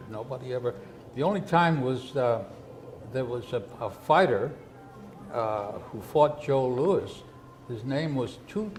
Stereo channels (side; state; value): both; identical; correlation 1.00